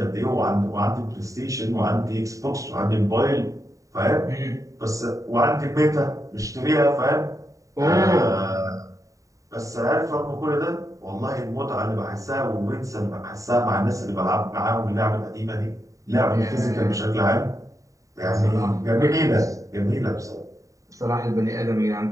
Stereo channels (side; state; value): left; late; 0.16 ms